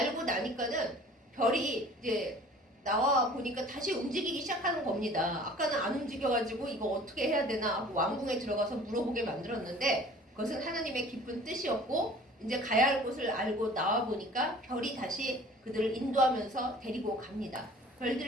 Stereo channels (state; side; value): normal; both; correlation 0.48